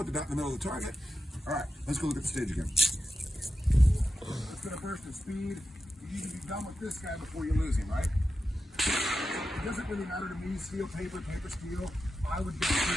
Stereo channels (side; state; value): both; normal; correlation 0.90